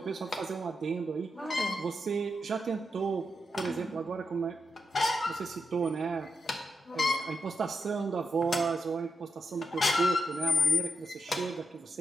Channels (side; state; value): both; normal; correlation 0.84